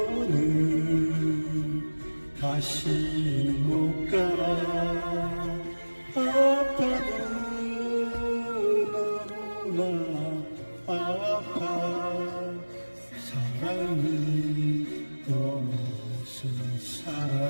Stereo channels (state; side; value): inverted; both; correlation -1.00